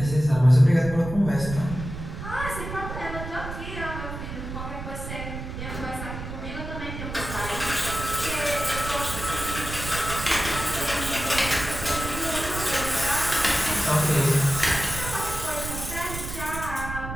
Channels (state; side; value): noise; right; rumble, 8 dB below the sound